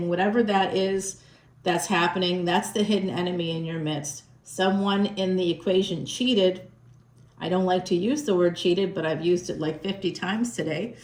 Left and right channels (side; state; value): both; identical; correlation 1.00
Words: Whatever that is that's happening, that's the hidden enemy in your midst. Someone in the equation cheated. I don't like to use the word cheated, but I've used it like 50 times today.